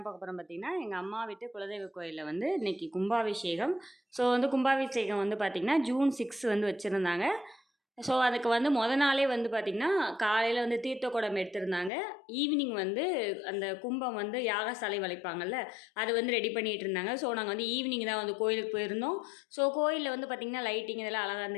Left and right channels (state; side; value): drops out; right; at 11.9 s